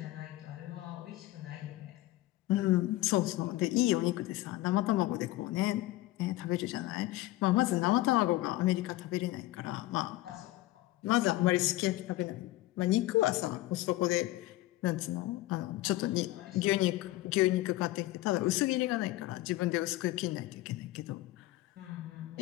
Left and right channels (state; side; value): quieter; right; 17.1 dB